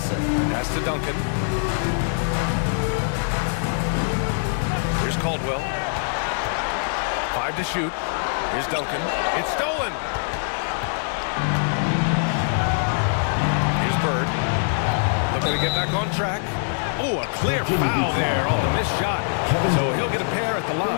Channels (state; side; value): silent; right; 63 dB below the other